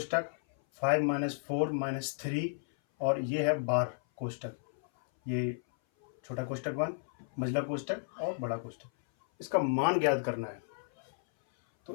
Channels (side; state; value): right; silent; 56 dB below the other